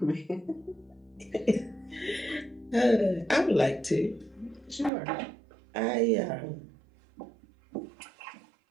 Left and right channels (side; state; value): left; drops out; at 4.9 s